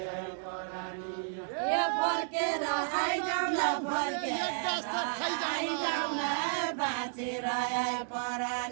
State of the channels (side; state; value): left; silent; digital silence